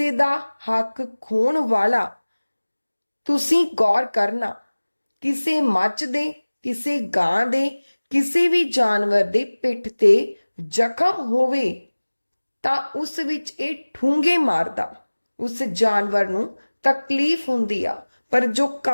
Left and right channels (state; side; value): inverted; both; correlation -1.00